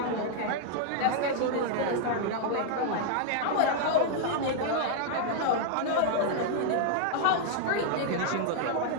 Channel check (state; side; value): different; both; correlation 0.00